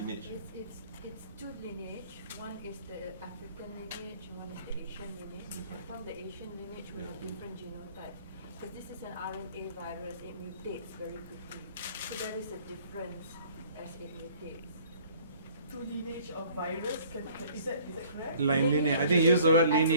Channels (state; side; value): inverted; both; correlation -0.55